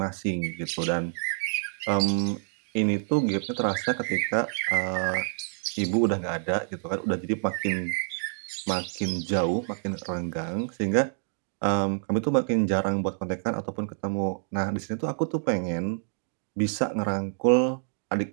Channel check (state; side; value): silent; left; 60 dB below the other